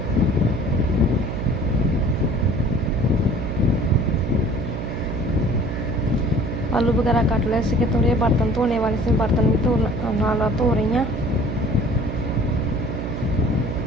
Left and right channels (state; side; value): noise; right; hum, 5 dB below the sound